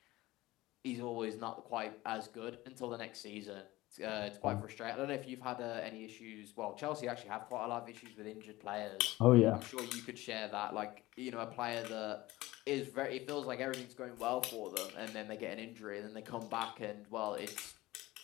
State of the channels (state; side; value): quieter; right; 18.5 dB